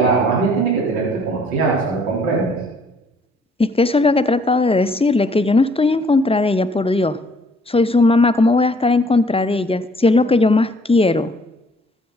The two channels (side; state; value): both; normal; correlation 0.61